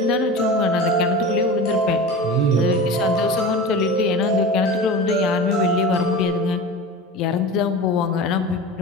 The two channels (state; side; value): normal; both; correlation 0.32